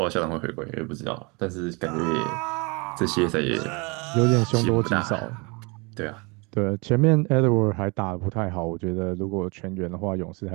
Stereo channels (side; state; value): left; quieter; 29.2 dB